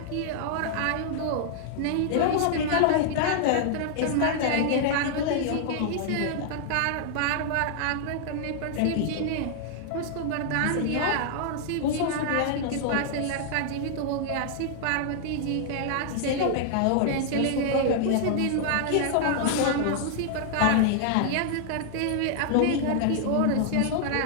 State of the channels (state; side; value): different; both; correlation -0.01